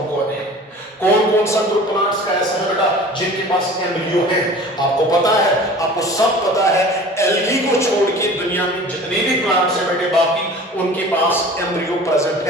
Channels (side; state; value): both; normal; correlation 0.42